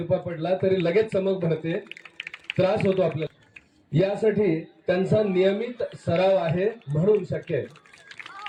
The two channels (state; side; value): identical; both; correlation 1.00